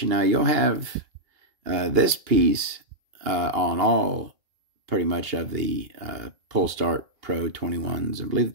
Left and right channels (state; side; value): late; left; 2.8 ms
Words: Now, you'll have this piece on all pretty much of the Pull Start Pro 21s. I believe